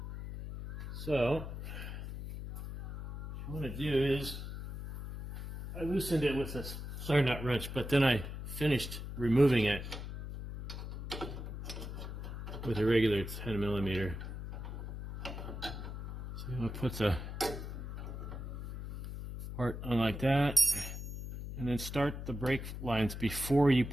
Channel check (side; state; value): left; noise; hum, 7 dB below the sound